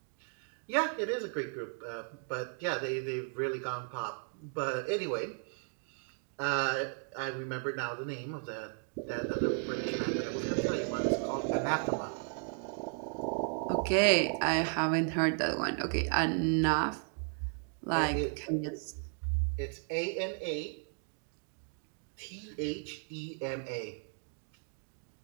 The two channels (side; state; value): left; silent; 54 dB below the other